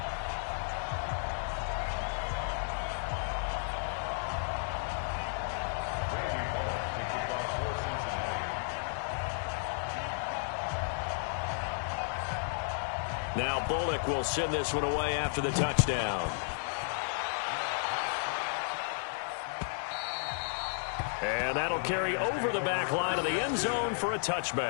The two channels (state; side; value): silent; right; digital silence